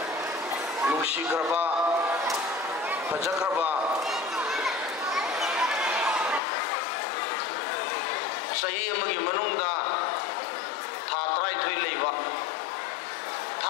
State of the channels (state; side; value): drops out; right; at 6.4 s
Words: nungsigraba pajagraba sahi amagi manungda tha trai thui leiba